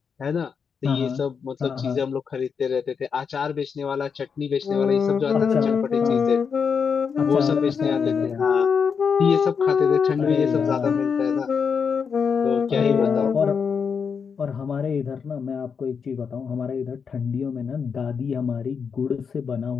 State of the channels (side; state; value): right; quieter; 6.2 dB